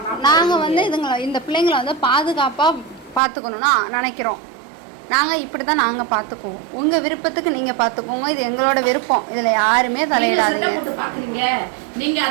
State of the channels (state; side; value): drops out; left; at 3.2 s